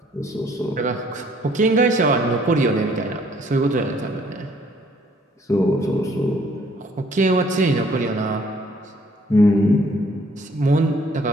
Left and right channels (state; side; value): normal; both; correlation 0.62